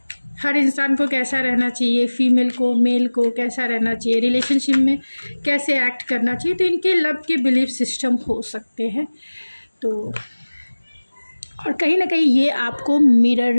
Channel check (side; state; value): both; inverted; correlation -1.00